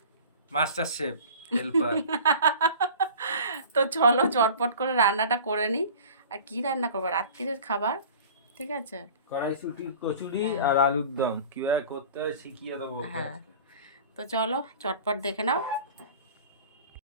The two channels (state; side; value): inverted; both; correlation -0.42